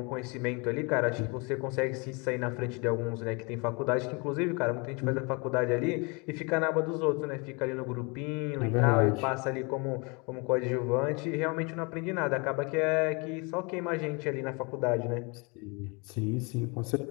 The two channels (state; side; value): quieter; right; 30.4 dB